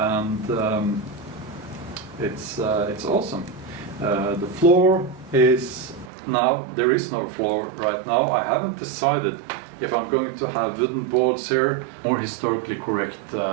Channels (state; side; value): drops out; left; at 6.1 s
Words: it's awesome. The floor is now, there is no floor right now. I haven't decided if I'm going to have wooden boards here, more historically correct,